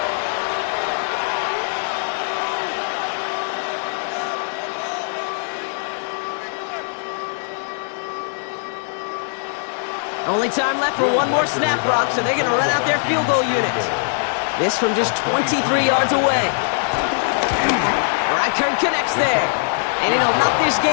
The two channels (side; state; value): right; silent; digital silence